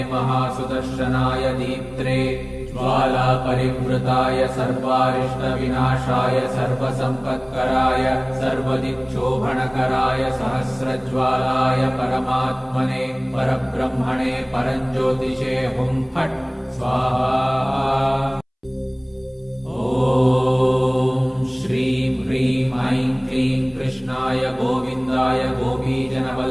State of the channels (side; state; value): both; identical; correlation 1.00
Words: महासुदर्शनाय दीप्त्रे ज्वालापरिवृताय सर्वारिष्टविनाशाय सर्वसम्पत्कराय सर्वदिक्शोभनकराय सहस्रज्वालाय परमात्मने परब्रह्मणे परञ्ज्योतिषे हुं फट् स्वाहा। ॐ श्रीं ह्रीं ऐं क्लीं कृष्णाय गोविन्दाय